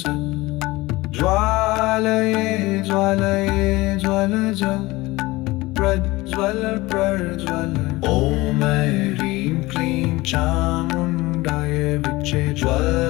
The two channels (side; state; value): right; quieter; 20.6 dB